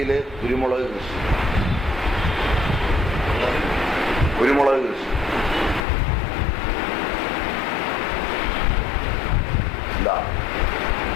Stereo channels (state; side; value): drops out; right; at 5.8 s